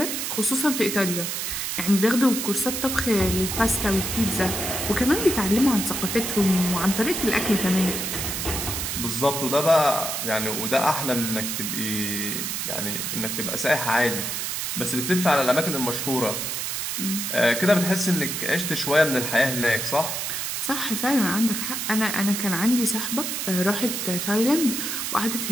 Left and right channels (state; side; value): noise; right; hiss, 2 dB below the sound